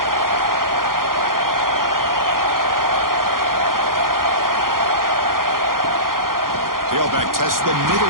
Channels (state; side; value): late; left; 0.91 ms